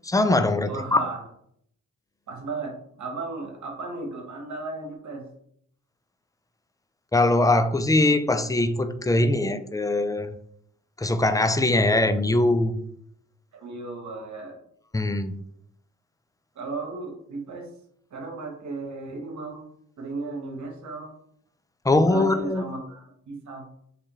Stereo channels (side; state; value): both; normal; correlation 0.63